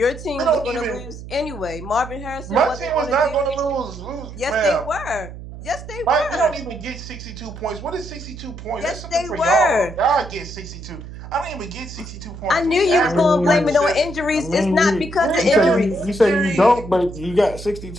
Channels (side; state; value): right; noise; hum, 12 dB below the sound